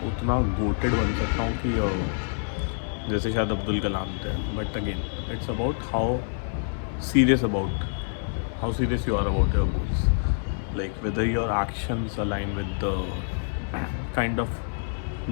उतना गोटेड बन सकता हूँ कि जैसे शायद अब्दुल कलाम थे। But again it's about how serious you are about your goals, like whether your actions align with the kind of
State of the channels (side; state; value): right; silent; 60 dB below the other